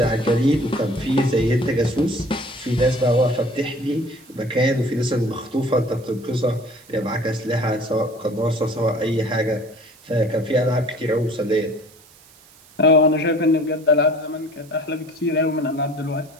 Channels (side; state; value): right; noise; hiss, 26 dB below the sound